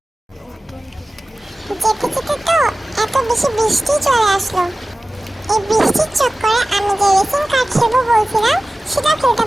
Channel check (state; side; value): normal; both; correlation 0.97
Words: যেতে যেতে তো এত বেশি বৃষ্টি চলে আসলো। এই বৃষ্টির চক্করে আমি যে রেসিং কার খেলবো বলছিলাম সেটা খেলতে